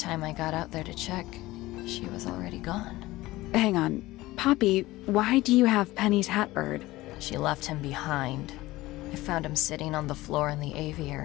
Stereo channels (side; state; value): right; quieter; 18.4 dB